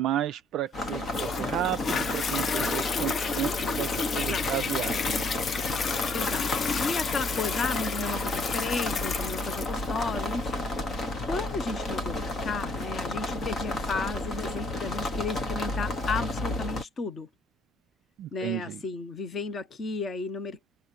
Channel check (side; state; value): both; normal; correlation 0.63